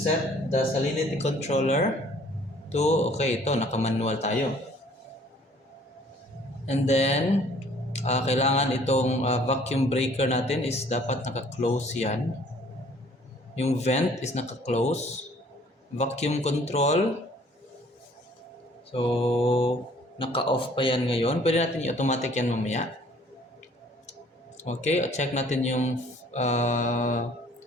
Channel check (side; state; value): both; normal; correlation 0.56